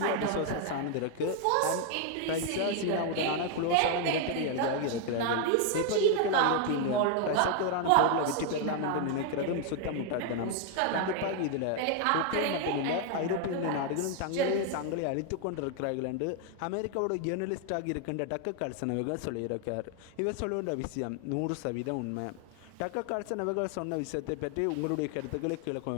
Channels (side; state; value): both; different; correlation 0.00